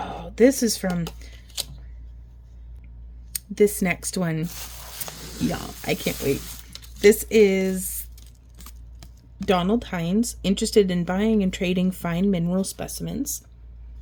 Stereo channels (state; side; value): identical; both; correlation 1.00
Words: this is from this next one. Y'all, I can't wait. This is Donald Hines, interested in buying and trading fine mineral specimens.